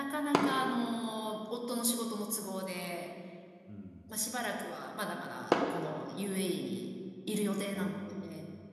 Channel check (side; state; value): both; identical; correlation 1.00